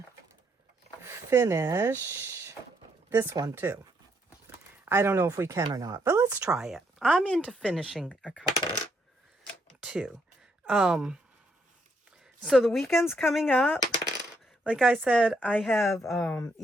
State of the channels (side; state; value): both; normal; correlation 0.74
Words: finish this one too. I don't know if we can or not, but let's try it. I'm into finishing a couple too. So the weekend's coming up. Like I said, I have